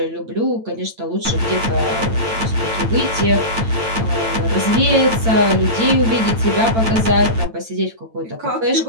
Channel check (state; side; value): late; left; 9.0 ms